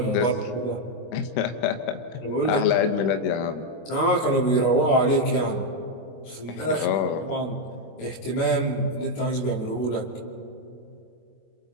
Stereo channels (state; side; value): late; right; 24 ms